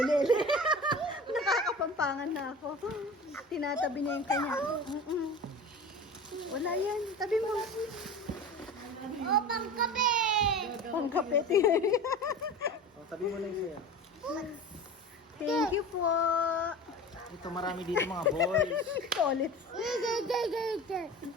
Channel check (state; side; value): normal; both; correlation 0.34